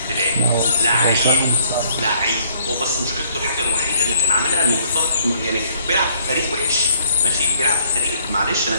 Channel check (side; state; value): both; inverted; correlation -0.63